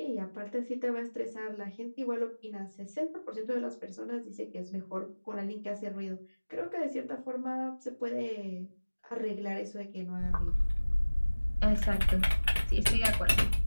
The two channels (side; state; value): both; inverted; correlation -1.00